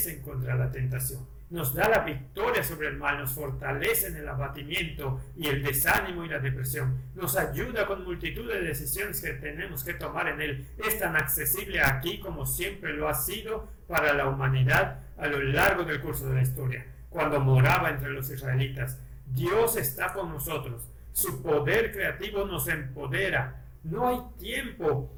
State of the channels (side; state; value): both; identical; correlation 1.00